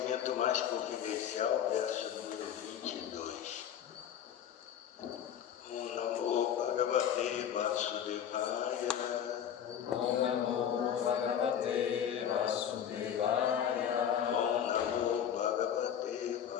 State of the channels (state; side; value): quieter; right; 9.2 dB